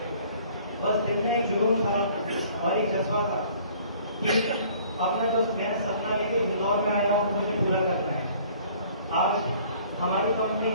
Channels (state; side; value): inverted; both; correlation -0.54